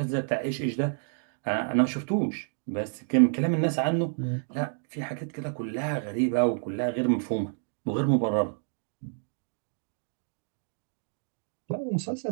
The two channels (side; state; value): left; silent; digital silence